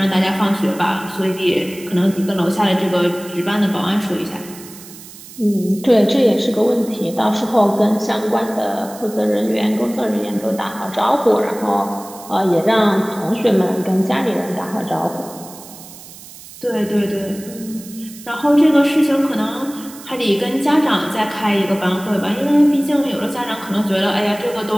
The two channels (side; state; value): right; noise; hiss, 17 dB below the sound